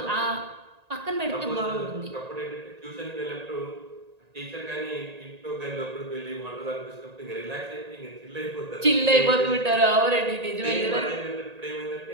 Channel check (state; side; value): late; left; 1.8 ms